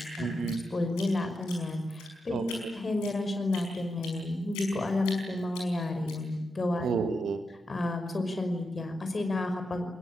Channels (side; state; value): both; normal; correlation 0.86